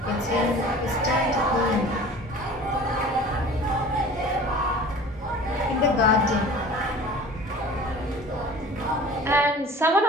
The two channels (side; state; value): both; normal; correlation 0.43